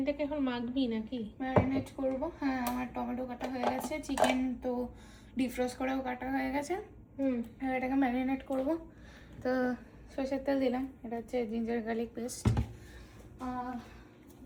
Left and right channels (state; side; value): identical; both; correlation 1.00